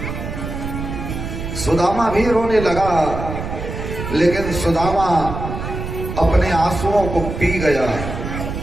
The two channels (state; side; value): noise; right; rumble, 6 dB below the sound